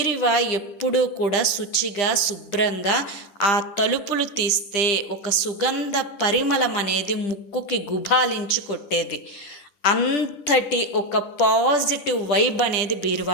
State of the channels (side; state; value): right; late; 10 ms